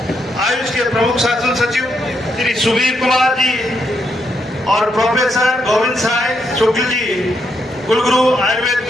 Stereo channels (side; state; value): both; normal; correlation 0.78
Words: आयुष के प्रमुख शासन सचिव श्री सुबीर कुमार जी और प्रोफेसर गोविंद साय शुक्ल जी, कुलगुरु आयुर्वेद